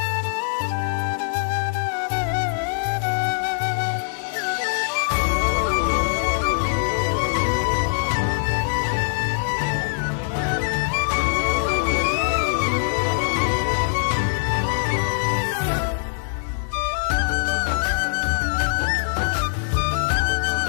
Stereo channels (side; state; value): right; silent; digital silence